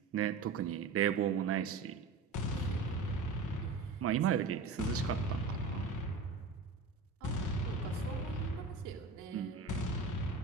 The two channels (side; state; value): left; quieter; 4.1 dB